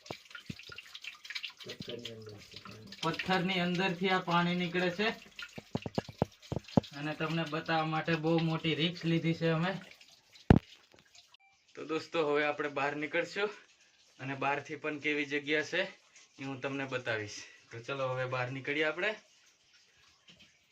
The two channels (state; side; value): identical; both; correlation 1.00